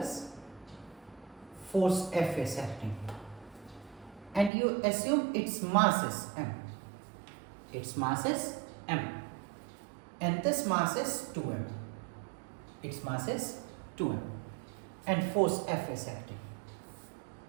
force F is acting, and you assume its mass is M. Its mass is M, and this mass is 2M. Its mass is 2M, and force F is acting.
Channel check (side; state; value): left; drops out; at 4.5 s